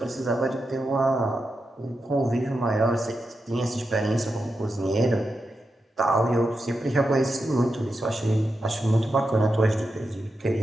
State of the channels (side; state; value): both; normal; correlation 0.88